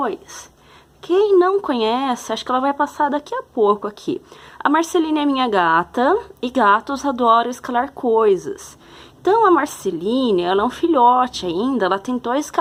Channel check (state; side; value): identical; both; correlation 1.00